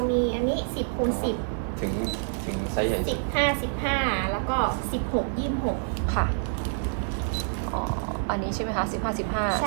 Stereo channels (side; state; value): left; silent; digital silence